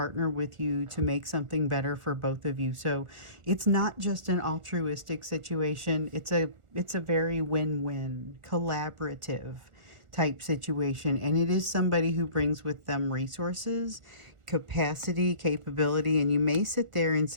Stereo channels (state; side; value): late; left; 1.4 ms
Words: with you to make something better for both of you. So it's not just an altruistic situation. It's a very win-win, collaborative type situation, and it is somebody who brings with them resources, capacity, capability, and you may sit there and